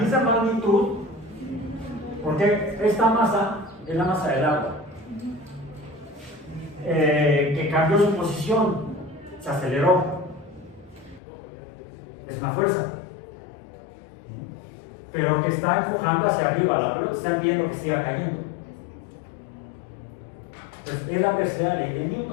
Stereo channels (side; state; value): right; drops out; at 11.2 s